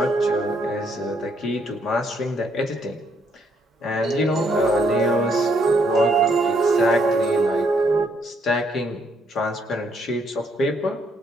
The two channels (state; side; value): normal; both; correlation 0.71